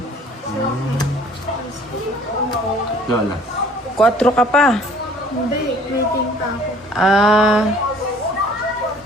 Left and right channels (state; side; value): normal; both; correlation 0.54